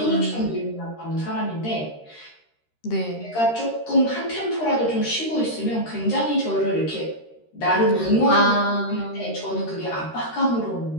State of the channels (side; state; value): right; late; 13 ms